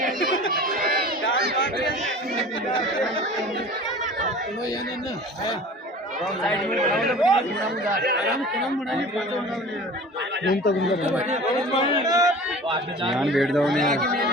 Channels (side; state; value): both; normal; correlation 0.41